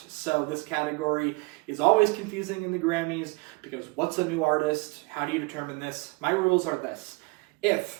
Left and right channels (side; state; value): left; quieter; 26.3 dB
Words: So this category is always confusing in the Grammys because what's a new artist? How do you determine this? My rules are this.